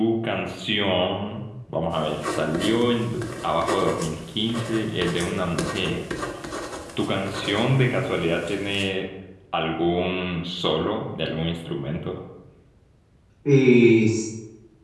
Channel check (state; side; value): identical; both; correlation 1.00